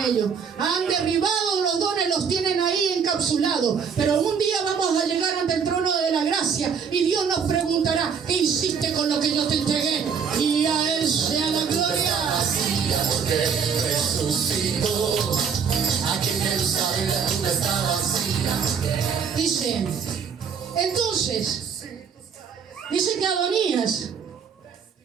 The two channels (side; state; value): left; quieter; 6.6 dB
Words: ellos, han derribado los dones, los tienen ahí encapsulados, pero un día vamos a llegar ante el trono de la gracia y Dios nos preguntará: ¿qué hiciste con lo que yo te entregué? Y a Él sea la gloria. Porque resucitó, aquí en Jerusalén la tumba está vacía. Dice, entonces, dice que